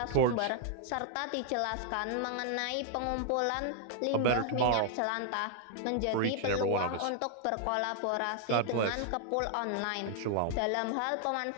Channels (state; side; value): different; both; correlation 0.00